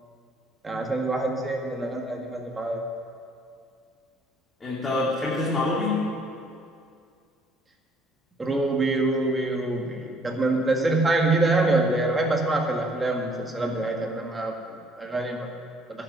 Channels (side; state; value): both; normal; correlation 0.62